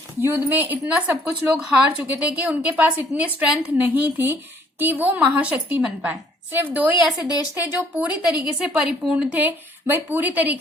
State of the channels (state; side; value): normal; both; correlation 0.61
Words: युद्ध में इतना सब कुछ लोग हार चुके थे कि उनके पास इतनी स्ट्रेंथ नहीं थी कि वो महाशक्ति बन पाए। सिर्फ दो ही ऐसे देश थे जो पूरी तरीके से परिपूर्ण थे, भाई पूरी